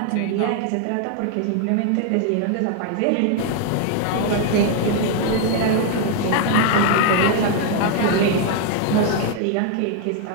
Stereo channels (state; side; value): different; both; correlation 0.00